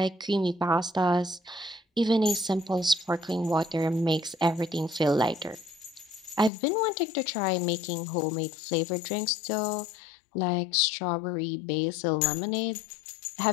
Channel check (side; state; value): right; drops out; at 6.5 s